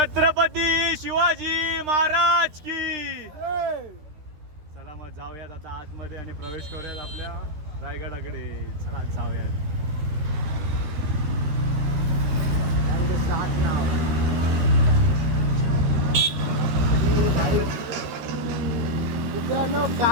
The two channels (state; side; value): late; left; 13 ms